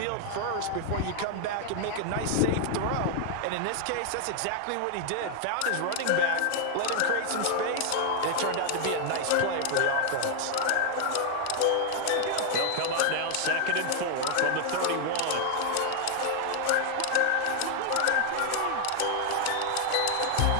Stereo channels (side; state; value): both; different; correlation 0.00